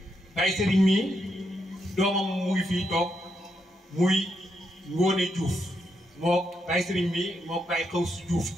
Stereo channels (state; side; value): normal; both; correlation 0.80